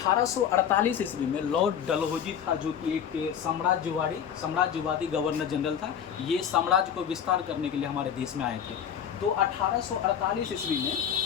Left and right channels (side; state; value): right; quieter; 8.6 dB